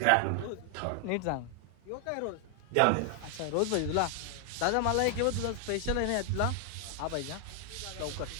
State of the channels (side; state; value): both; different; correlation 0.00